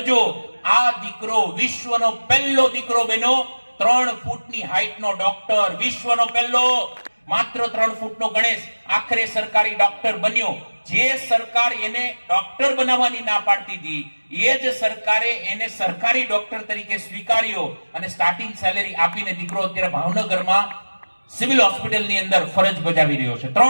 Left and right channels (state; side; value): inverted; both; correlation -1.00